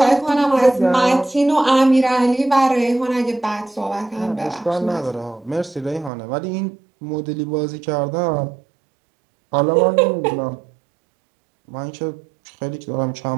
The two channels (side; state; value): left; drops out; at 6.1 s